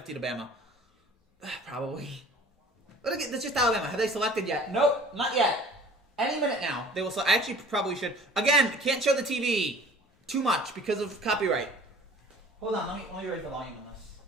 to Bama. Probably. But again, that's just Alabama. Have they selected yet? Nope, not yet. Any minute now. They will. I actually probably should. Again, can't show the TV too much because of copyright. Hold on, let me raise the volume on this.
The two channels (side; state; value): both; normal; correlation 0.47